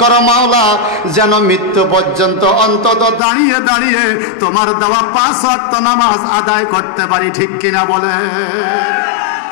করো মাওলা, যেন মৃত্যু পর্যন্ত অন্তত দাঁড়িয়ে দাঁড়িয়ে তোমার দেওয়া 5 ওয়াক্ত নামাজ আদায় করতে পারি। ঠিক কিনা বলে?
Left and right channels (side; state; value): right; drops out; at 3.2 s